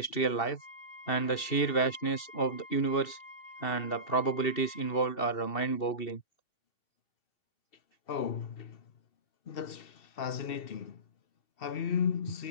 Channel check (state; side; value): late; right; 2.7 ms